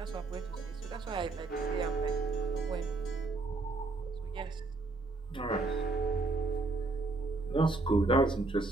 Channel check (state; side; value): quieter; left; 3.4 dB